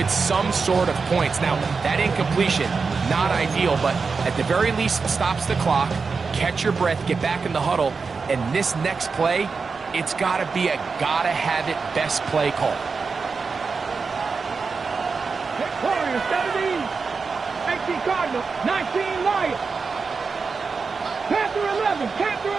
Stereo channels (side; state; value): left; quieter; 4.8 dB